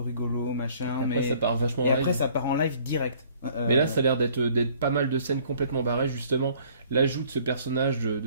machin. Après, mais... ça part vachement Et live. après, ça part en live direct. Mais là, ça a l'air d'être pas mal de scènes complètement barrées, justement. L'ajout de ce personnage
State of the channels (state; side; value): inverted; both; correlation -0.57